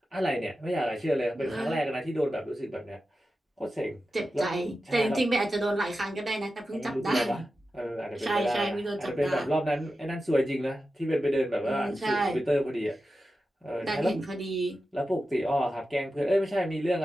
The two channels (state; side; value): normal; both; correlation 0.92